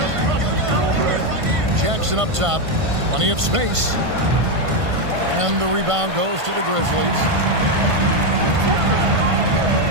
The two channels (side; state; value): left; late; 1.5 ms